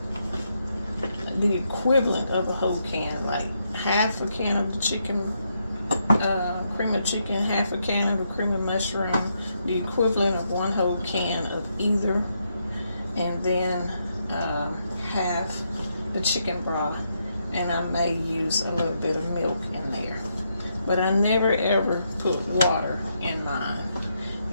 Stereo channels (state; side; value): inverted; both; correlation -0.79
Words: the equivalent of a whole can, like half a can of the chicken, cream of chicken, half a can of the cream of mushroom, the equivalent of 1 whole can of either, and then half the chicken broth, and I may use a little bit of milk in there. But I never ever put water in mine.